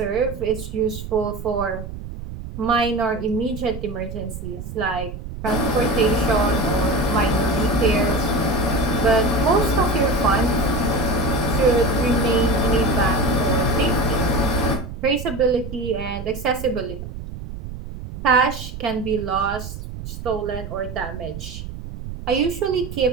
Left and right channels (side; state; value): right; noise; rumble, 10 dB below the sound